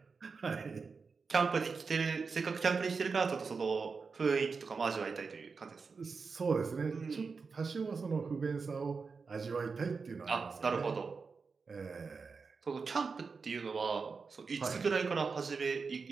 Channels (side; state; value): left; quieter; 4.9 dB